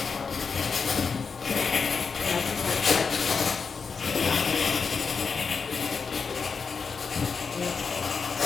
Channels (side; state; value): right; quieter; 5.4 dB